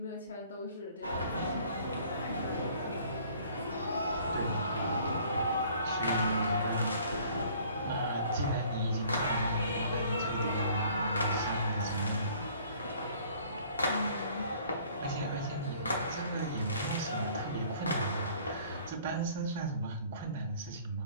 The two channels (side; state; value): both; inverted; correlation -0.55